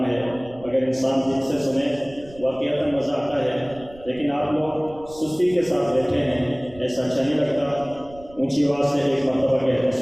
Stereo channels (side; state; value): right; noise; rumble, 21 dB below the sound